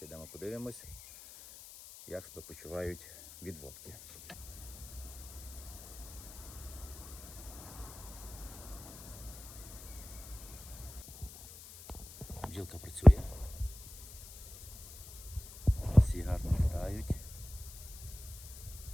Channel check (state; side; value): noise; left; hiss, 15 dB below the sound